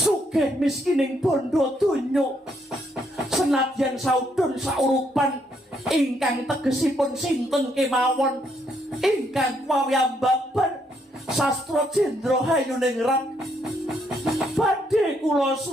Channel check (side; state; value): both; normal; correlation 0.73